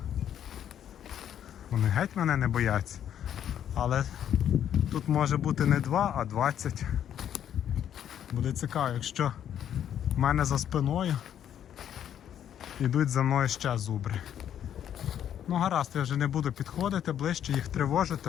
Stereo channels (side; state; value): right; quieter; 9.9 dB